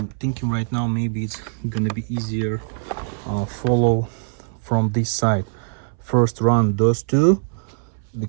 thinking right now maybe it's gonna be easier follow from this side. First run those two,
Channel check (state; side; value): silent; left; 64 dB below the other